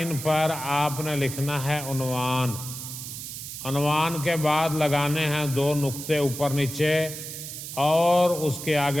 پر آپ نے لکھنا ہے عنوان۔ عنوان کے بعد لگانے ہیں 2 نقطے اوپر نیچے، اور اس کے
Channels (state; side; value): noise; right; hiss, 9 dB below the sound